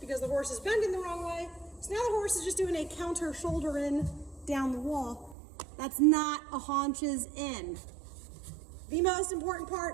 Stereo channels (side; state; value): left; drops out; at 5.4 s